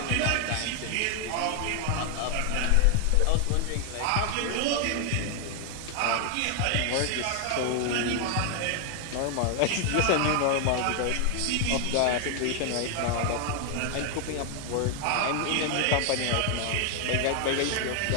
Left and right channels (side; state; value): both; different; correlation 0.00